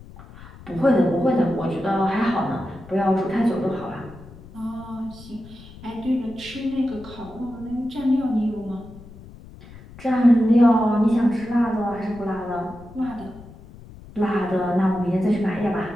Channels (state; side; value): noise; left; rumble, 19 dB below the sound